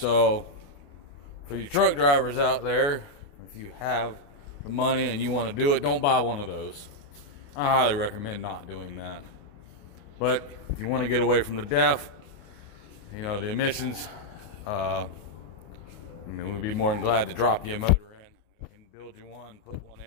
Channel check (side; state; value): right; late; 28 ms